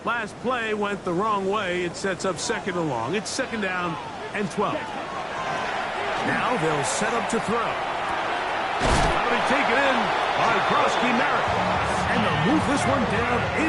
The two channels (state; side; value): identical; both; correlation 1.00